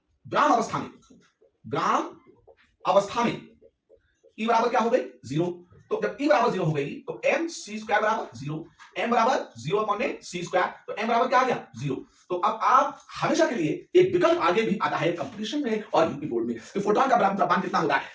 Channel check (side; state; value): both; identical; correlation 1.00